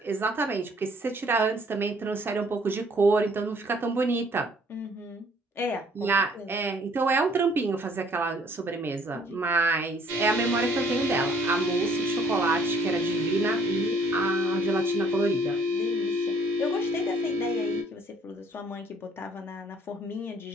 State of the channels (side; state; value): both; normal; correlation 0.61